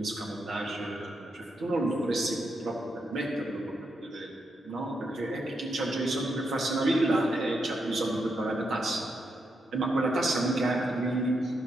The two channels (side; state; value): both; normal; correlation 0.82